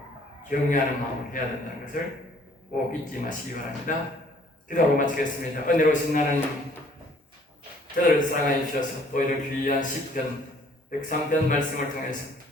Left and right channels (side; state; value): both; normal; correlation 0.58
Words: 경외하는 마음으로 해야 된다는 것을 꼭 잊지 마시기 바랍니다. 기도하고 마치겠습니다. 은혜로우신 하나님, 저들을 사랑하여 주셔서 또 이런 귀한 시편 103편 말씀을 통해서